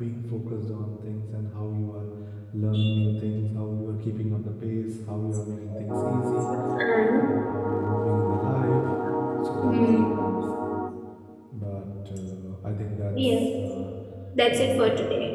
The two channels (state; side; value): identical; both; correlation 1.00